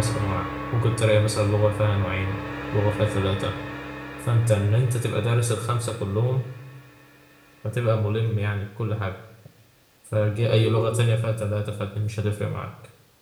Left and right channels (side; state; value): both; identical; correlation 1.00